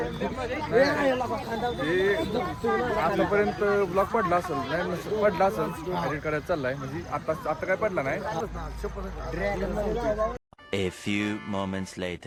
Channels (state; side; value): identical; both; correlation 1.00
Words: आतापर्यंत ब्लॉग पडला असेल, नाही पडला असेल, एडिट करायला चाललाय. म्हणजे आता काय पडला नाही. A few moments